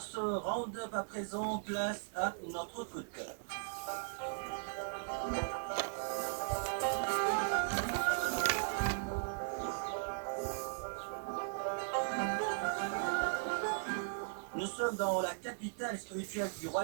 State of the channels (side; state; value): left; silent; digital silence